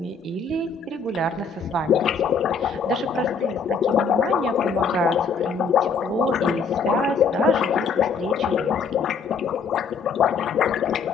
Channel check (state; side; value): quieter; right; 5.3 dB